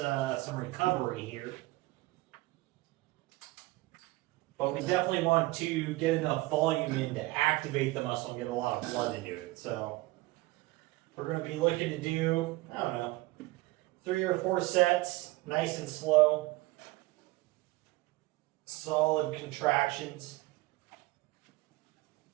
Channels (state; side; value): quieter; left; 20.5 dB